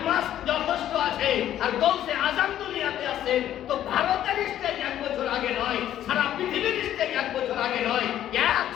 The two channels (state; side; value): quieter; right; 11.7 dB